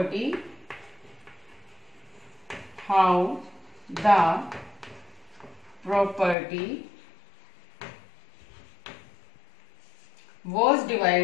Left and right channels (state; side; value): drops out; right; at 6.4 s